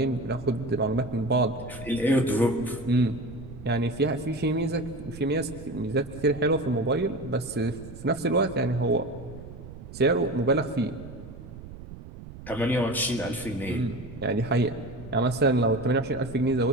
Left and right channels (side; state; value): right; noise; rumble, 14 dB below the sound